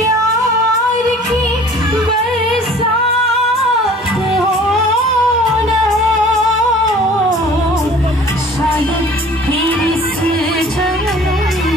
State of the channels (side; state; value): both; normal; correlation 0.49